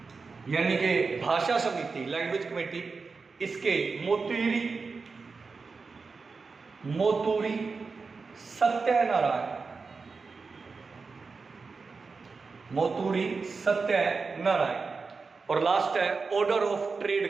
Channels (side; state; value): left; quieter; 4.6 dB